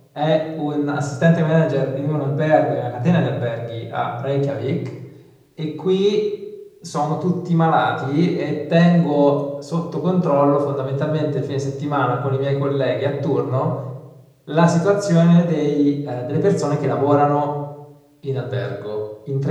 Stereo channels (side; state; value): both; identical; correlation 1.00